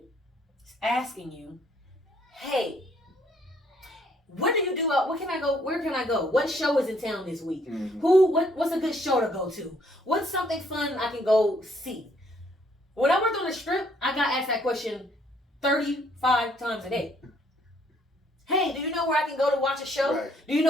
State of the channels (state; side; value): normal; both; correlation 0.66